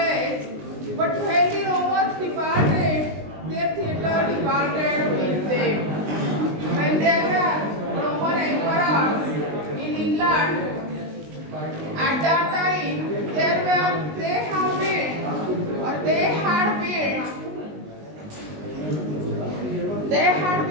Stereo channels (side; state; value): left; late; 19 ms